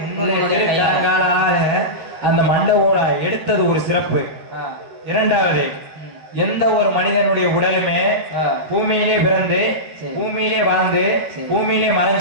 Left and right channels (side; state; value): left; late; 13 ms